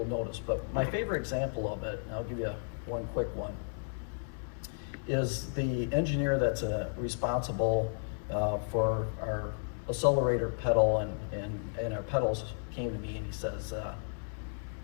notice. But my favorite example of it, and I'll give you one quick one, is the engineer that's responsible for our accelerator pedal, and our pedals came to me and he says,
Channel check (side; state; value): right; silent; digital silence